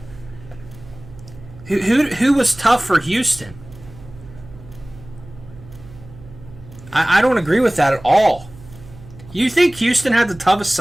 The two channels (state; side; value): noise; right; hum, 19 dB below the sound